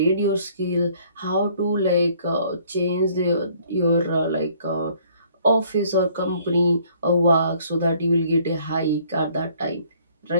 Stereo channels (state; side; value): inverted; both; correlation -0.60